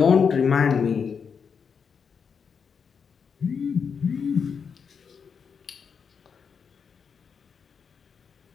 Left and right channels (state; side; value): quieter; right; 6.3 dB